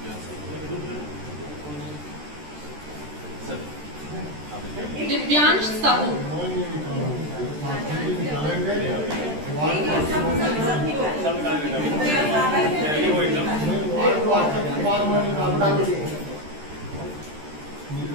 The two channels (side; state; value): left; late; 13 ms